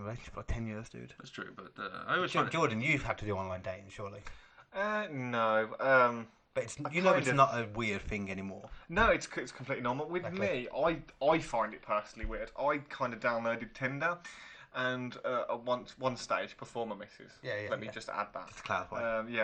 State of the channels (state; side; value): identical; both; correlation 1.00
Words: a relationship for like 10 years, dude. That's true, but I always find it... Jordan, you've had to do online dating, surely. No. But it's I you know kind it's of- not a weird thing anymore. No, it's completely normal. With Okay. me, I find it personally weird. I kind of downloaded Tinder, and at one stage before my missus. Let me just add that. Just to clarify.